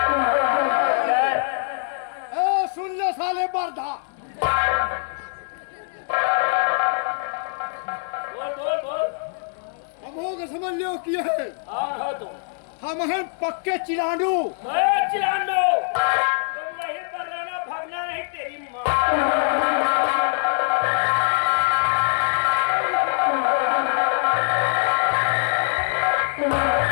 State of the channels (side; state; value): right; silent; 63 dB below the other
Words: सुन ले साले बरधा, हम हो समझ लियो किए है। हम हैं पक्के चिलांडू। चिलांडो तुम वहीं पर रहना, भागना नहीं तेरी माँ।